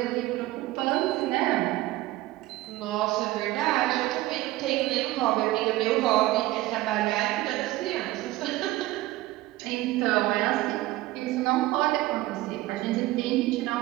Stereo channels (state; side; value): quieter; left; 17.5 dB